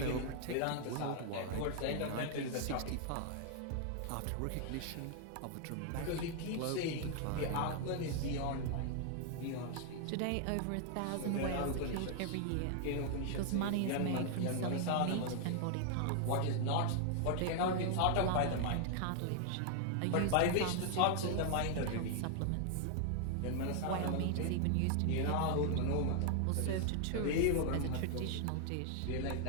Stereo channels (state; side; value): different; both; correlation 0.00